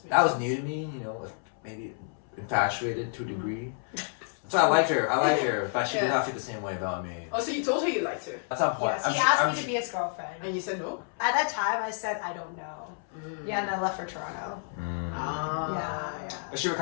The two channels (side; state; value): right; silent; 58 dB below the other